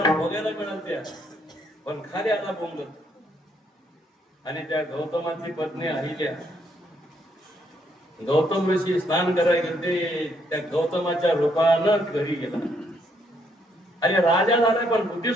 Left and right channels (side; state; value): both; normal; correlation 0.72